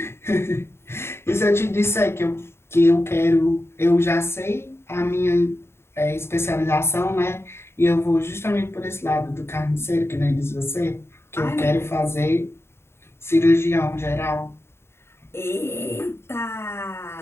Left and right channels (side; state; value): right; late; 0.12 ms